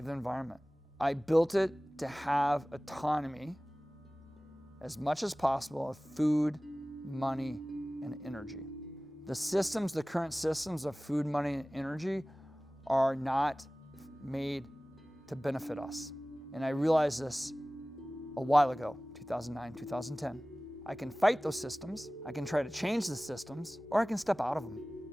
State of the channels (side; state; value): both; normal; correlation 0.98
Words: the environment. I built it to have autonomy as much as possible of food, money, and energy. The current systems of food, money, and energy are not made to benefit us. And I realized this a while ago, 2009, 2010. I can fight those systems, I can try to change the systems, or I can step out of them,